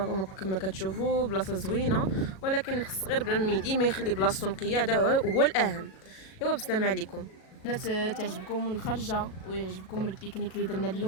كما كتشوفوا بلاصه زوينه، ولكن خص غير بنادم ديما يخلي بلاصتو نقيه، هذا هو الاهم. ايوا بالسلامه عليكم. بنات تعجبكم الخرجه ويعجبكم البيكنيك اللي درنا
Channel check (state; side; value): late; right; 37 ms